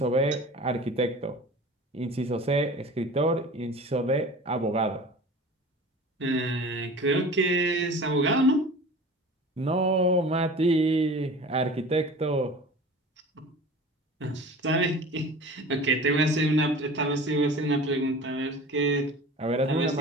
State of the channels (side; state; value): both; normal; correlation 0.39